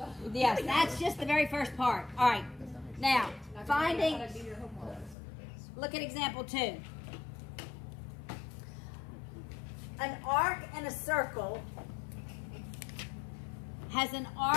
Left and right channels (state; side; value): drops out; right; at 5.2 s